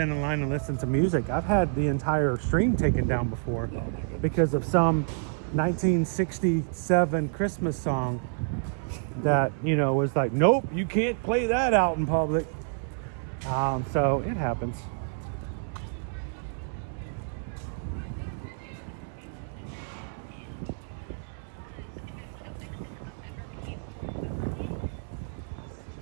in line and listen to music, I've had the entire stream taken down before because of some 1967 Christmas song that, you know, was like, nope, you can't play that out in public. So it happens.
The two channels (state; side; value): silent; left; digital silence